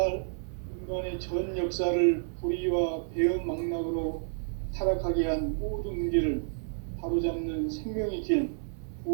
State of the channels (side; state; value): left; silent; digital silence